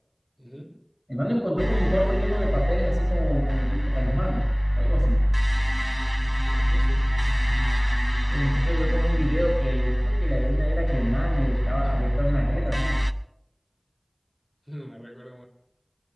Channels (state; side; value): identical; both; correlation 1.00